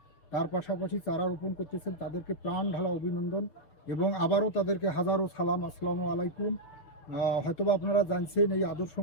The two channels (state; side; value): late; right; 6.9 ms